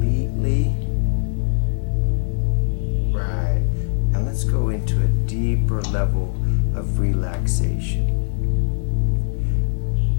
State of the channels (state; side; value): silent; right; 56 dB below the other